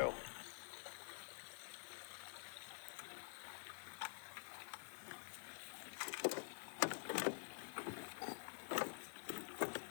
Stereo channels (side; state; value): right; silent; digital silence